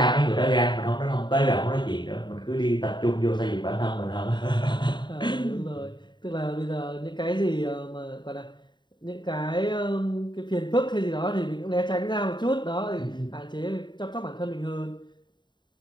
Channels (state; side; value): late; right; 0.22 ms